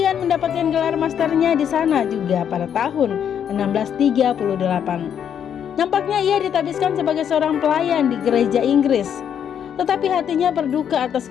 mendapatkan gelar masternya di sana juga pada tahun 1638. Nampaknya ia ditabiskan sebagai seorang pelayan di gereja Inggris, tetapi hatinya berduka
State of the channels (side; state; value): right; quieter; 8.7 dB